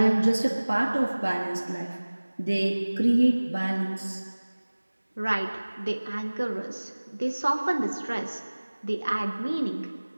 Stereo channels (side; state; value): both; inverted; correlation -1.00